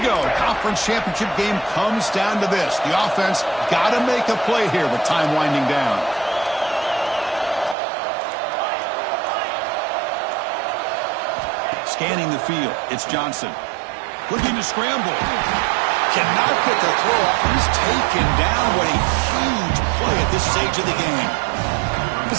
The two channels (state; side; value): drops out; left; at 7.8 s